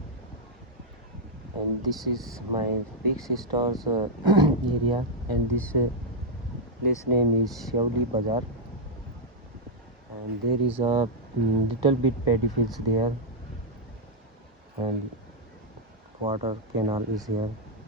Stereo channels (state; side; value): normal; both; correlation -0.03